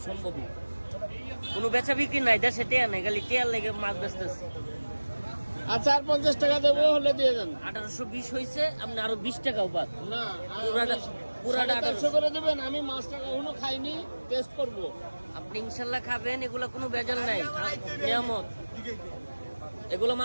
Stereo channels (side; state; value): both; inverted; correlation -1.00